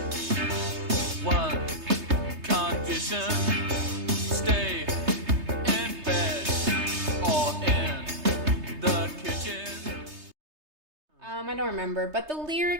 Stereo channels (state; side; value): late; left; 3.3 ms